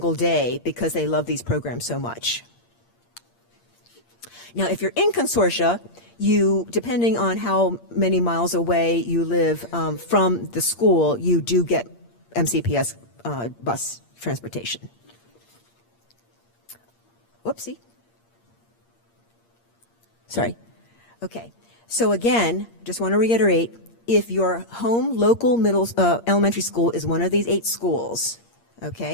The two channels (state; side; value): late; right; 8.6 ms